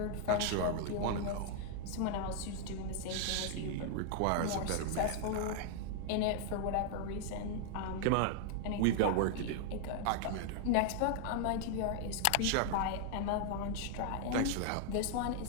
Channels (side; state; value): both; different; correlation 0.00